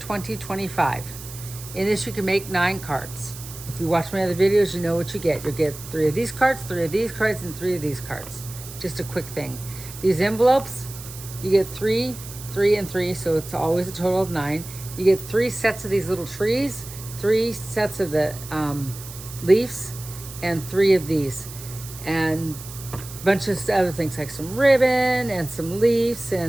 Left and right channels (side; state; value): right; noise; hiss, 14 dB below the sound